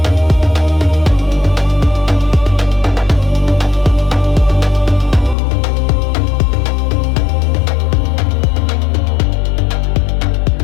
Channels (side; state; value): right; drops out; at 5.4 s